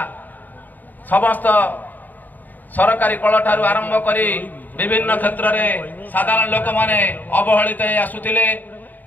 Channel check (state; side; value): late; right; 0.086 ms